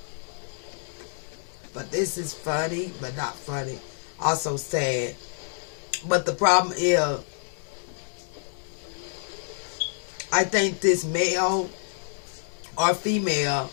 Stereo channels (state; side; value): silent; right; digital silence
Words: But this is funny, but not funny. Also sad. But the problem is, I think this male or female,